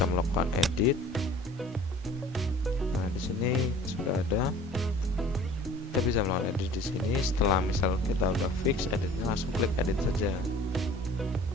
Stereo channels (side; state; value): both; normal; correlation 0.48